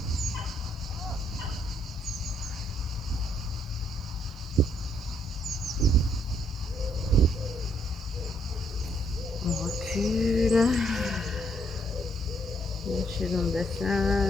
On recule. Lâchez dans le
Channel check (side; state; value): both; normal; correlation 0.71